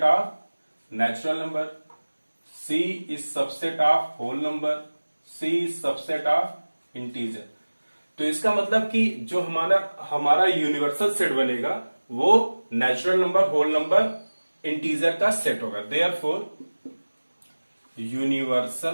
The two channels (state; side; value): inverted; both; correlation -1.00